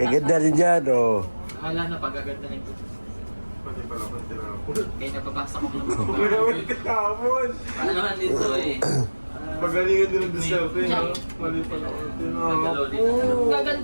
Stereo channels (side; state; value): both; inverted; correlation -1.00